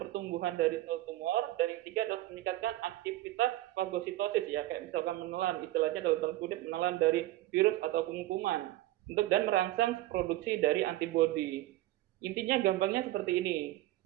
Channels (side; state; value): left; quieter; 16.2 dB